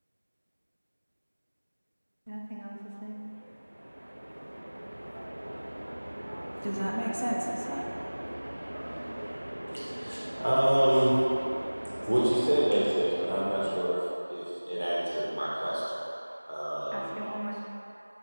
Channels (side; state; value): both; inverted; correlation -1.00